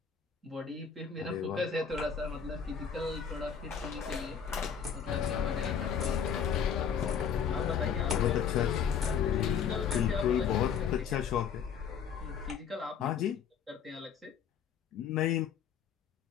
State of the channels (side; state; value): right; quieter; 7.4 dB